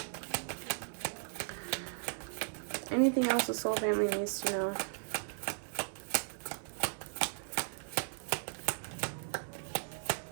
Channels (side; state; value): left; silent; digital silence